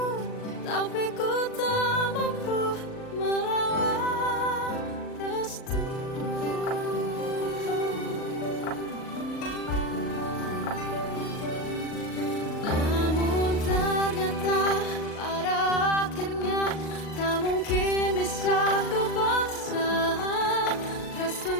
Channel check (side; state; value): right; late; 38 ms